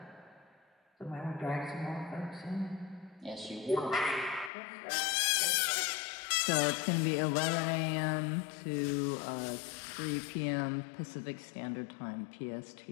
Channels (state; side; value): drops out; right; at 4.5 s